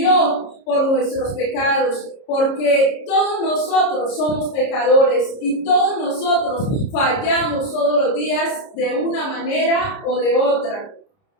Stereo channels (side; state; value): right; late; 30 ms